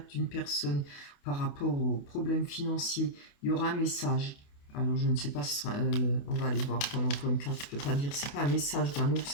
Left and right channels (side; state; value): right; late; 28 ms